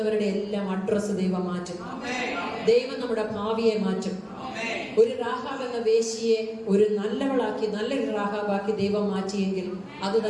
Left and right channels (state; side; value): identical; both; correlation 1.00